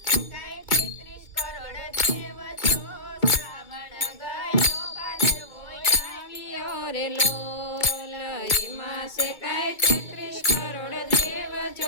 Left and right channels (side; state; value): right; late; 2.2 ms